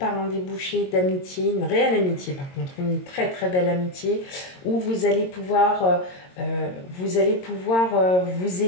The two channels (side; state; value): right; late; 22 ms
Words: un débouché d'amitié, une réelle amitié par contre, une très belle amitié où vous allez pouvoir vous